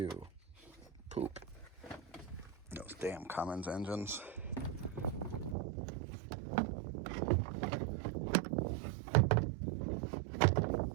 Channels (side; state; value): left; drops out; at 5.6 s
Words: Poop. Those damn Cummins engines.